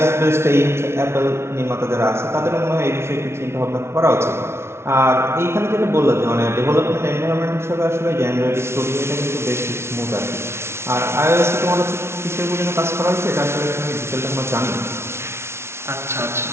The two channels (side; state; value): left; late; 0.12 ms